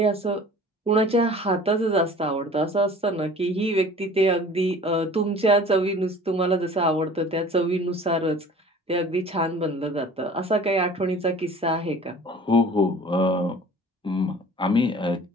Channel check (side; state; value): both; normal; correlation 0.46